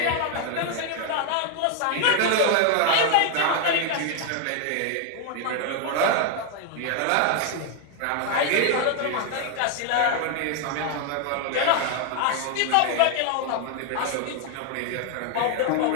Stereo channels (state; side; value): different; both; correlation 0.00